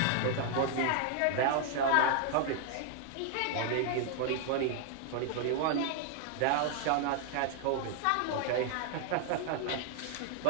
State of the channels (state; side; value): different; both; correlation 0.00